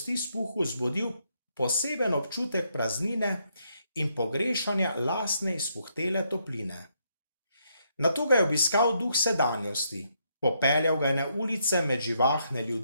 zbudil poseben občutek praznine in pogrešanja lastne izpuhtele topline. Nato ga je obiskal duh sedanjosti, popeljal ga je na ulice med živahne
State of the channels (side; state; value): both; inverted; correlation -0.76